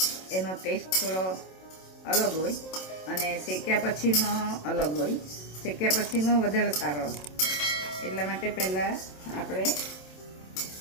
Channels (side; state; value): right; late; 27 ms